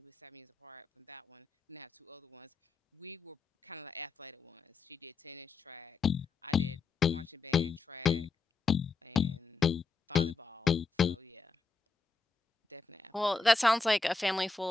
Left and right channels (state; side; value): quieter; right; 4.3 dB